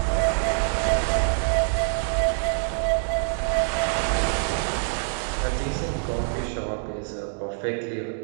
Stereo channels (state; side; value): silent; left; digital silence